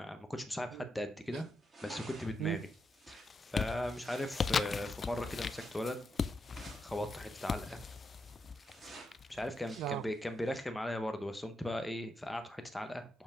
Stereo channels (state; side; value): normal; both; correlation 0.84